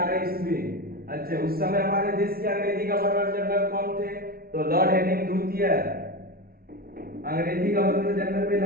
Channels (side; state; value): left; late; 0.44 ms